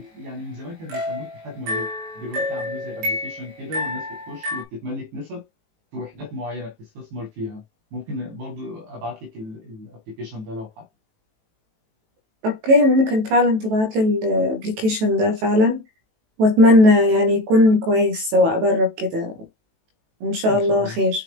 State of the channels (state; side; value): late; left; 18 ms